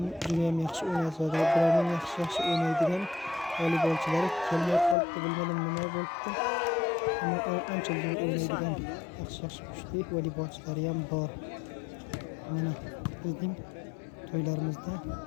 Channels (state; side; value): drops out; right; at 5.0 s